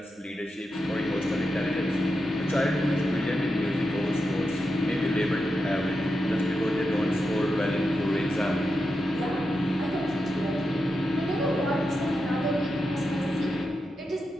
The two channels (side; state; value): both; normal; correlation 0.88